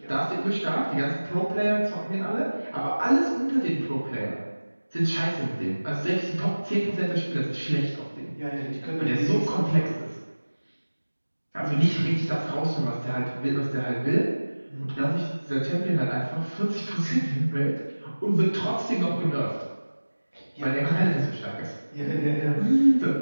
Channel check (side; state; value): both; inverted; correlation -1.00